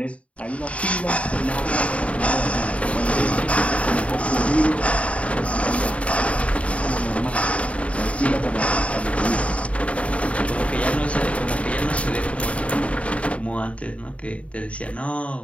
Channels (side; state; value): right; late; 0.064 ms